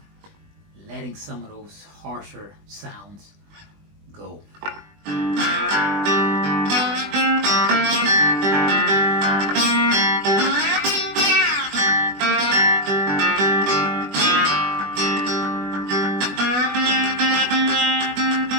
letting some of those harsher sounds go.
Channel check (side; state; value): left; late; 20 ms